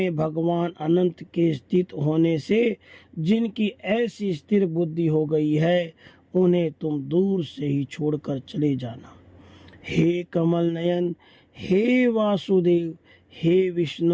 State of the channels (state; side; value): identical; both; correlation 1.00